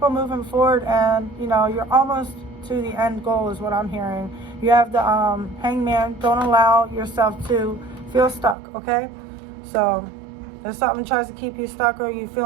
on moving forward, and you know, you're almost to the end goal is what I'm hearing. You have the Hangman. Don't allow yourself to feel stuck, okay? So if something tries to keep you stuck, or you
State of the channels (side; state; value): left; drops out; at 8.6 s